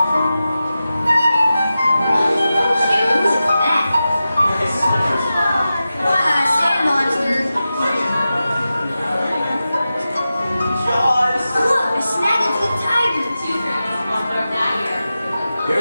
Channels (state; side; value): inverted; both; correlation -0.93